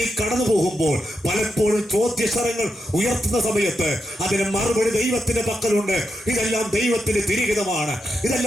കടന്നു പോകുമ്പോൾ പലപ്പോഴും ചോദ്യശരങ്ങൾ ഉയർത്തുന്ന സമയത്ത് അതിന് മറുപടി ദൈവത്തിന്റെ പക്കലുണ്ട്. ഇതെല്ലാം ദൈവത്തിന്റെ തിരിഹിതമാണ്,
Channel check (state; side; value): normal; both; correlation 0.85